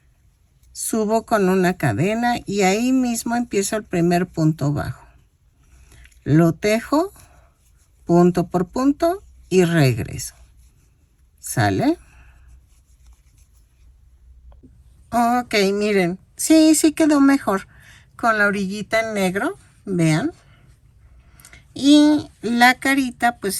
Subo con una cadena y ahí mismo empiezo el primer punto bajo. Lo tejo punto por punto y regreso. ¿Sale? Ok, miren. Sí quedó mejor con la orillita en negro. Vean. Y la carita pues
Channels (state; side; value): identical; both; correlation 1.00